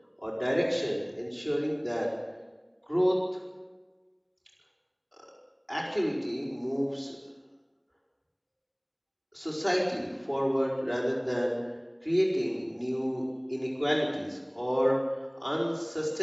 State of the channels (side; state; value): both; identical; correlation 1.00